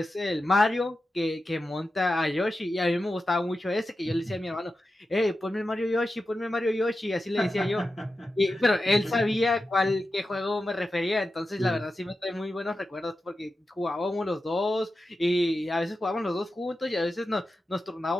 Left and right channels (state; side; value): normal; both; correlation 0.92